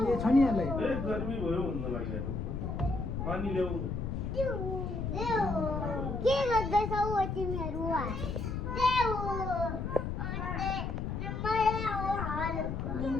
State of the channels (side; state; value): left; noise; rumble, 3 dB below the sound